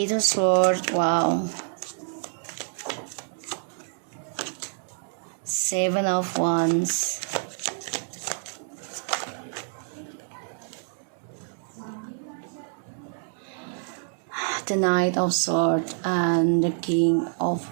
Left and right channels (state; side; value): silent; left; digital silence